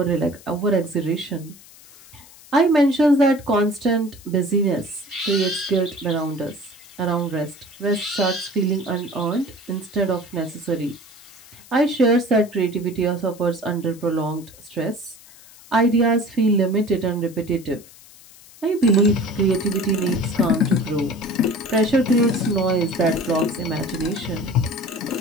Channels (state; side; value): noise; left; hiss, 22 dB below the sound